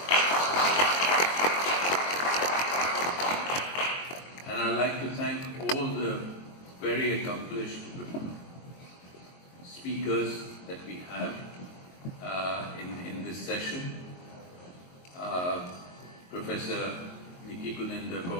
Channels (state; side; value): late; right; 22 ms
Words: And I'd like to thank all the very accomplished speakers that we have in this session. Professor Nikki Guninder